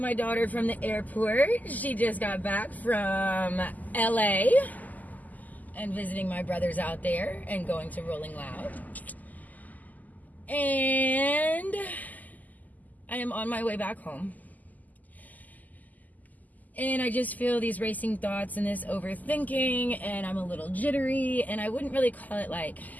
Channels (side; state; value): right; late; 0.081 ms